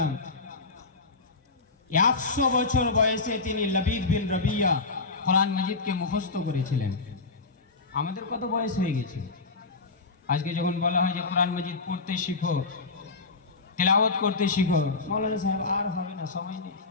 100 বছর বয়সে তিনি লবিদ বিন রবিয়া কোরআন মজিদকে মুখস্থ করেছিলেন। আমাদের কত বয়স হয়ে গেছে? আজকে যখন বলা হয় যে কোরআন মজিদ পড়তে শিখো, তেলাওয়াত করতে শিখো, মৌলানা সাহেব আর হবে না, সময় নেই,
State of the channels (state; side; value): quieter; right; 3.9 dB